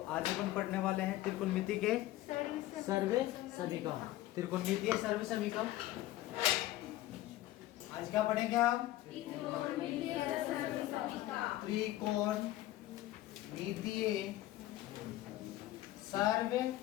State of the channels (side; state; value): right; quieter; 15.7 dB